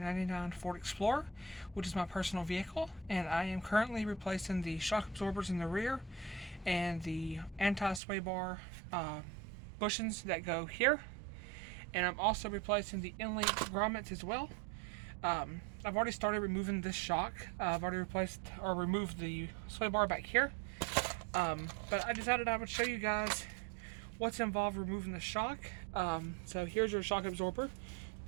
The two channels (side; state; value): left; drops out; at 8.0 s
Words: Ford Explorer, which is my personal vehicle, and I am currently replacing the shock absorbers in the rear and the anti-sway bar bushings that go here, and I'm also replacing the in-link grommets as well. I've already started removing this shock. I've already removed the sway bar back here, but I decided I would show you guys what's involved removing the shock. So here's your shock absorber.